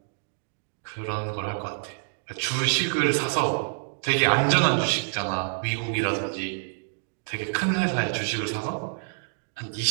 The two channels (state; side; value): silent; left; digital silence